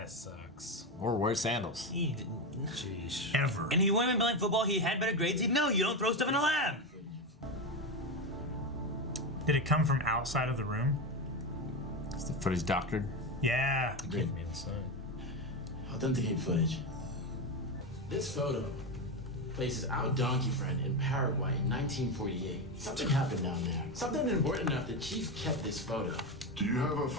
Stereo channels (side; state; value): both; normal; correlation 0.15